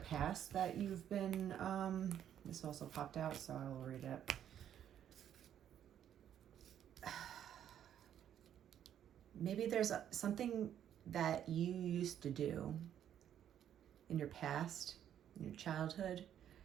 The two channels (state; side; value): quieter; left; 10.0 dB